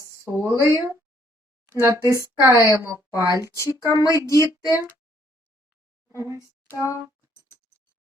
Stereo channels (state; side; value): normal; both; correlation 0.66